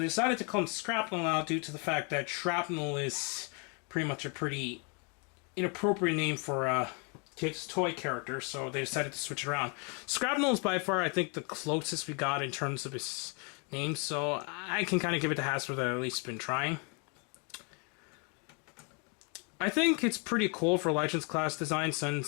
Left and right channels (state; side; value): quieter; right; 35.3 dB